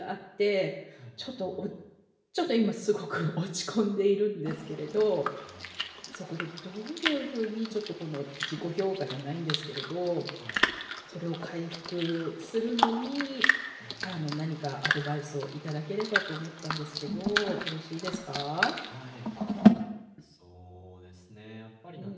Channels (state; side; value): identical; both; correlation 1.00